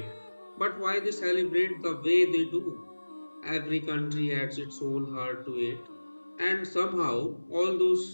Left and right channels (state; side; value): inverted; both; correlation -1.00